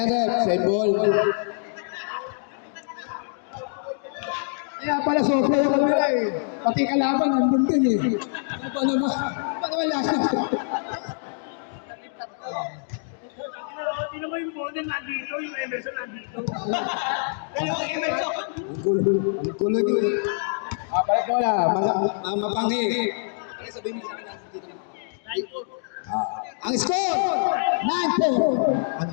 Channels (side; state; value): right; silent; 62 dB below the other